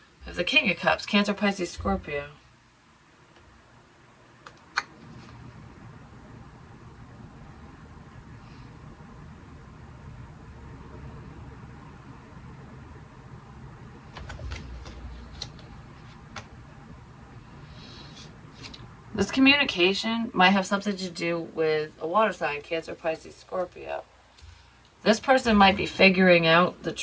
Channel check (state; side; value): identical; both; correlation 1.00